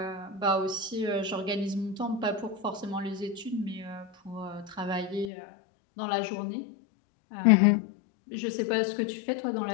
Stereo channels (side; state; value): right; drops out; at 5.3 s